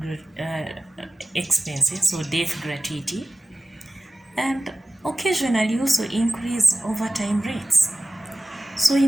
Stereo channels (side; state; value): both; normal; correlation 0.96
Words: expenses, so death gratuity, and occasionally also increase overtime rates. So